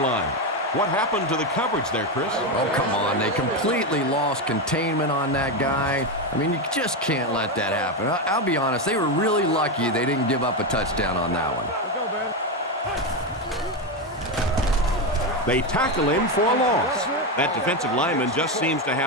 line. What happened to the coverage there, Chris? Oh, come on. They completely lost containment on that guy. I mean, you just can't let that happen. I'll be honest, they were really lucky they didn't give up a touchdown on that one. They tackle him for a loss. That defensive lineman just seems to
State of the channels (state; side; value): normal; both; correlation 0.11